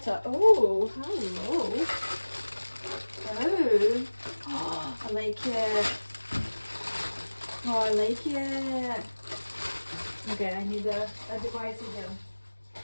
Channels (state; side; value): inverted; both; correlation -1.00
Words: Oh, hello. Oh, I like it. Oh, I like it. Okay, I need a device again.